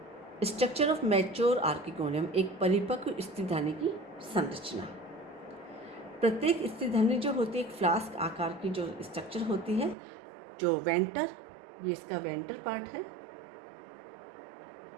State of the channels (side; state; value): left; drops out; at 10.0 s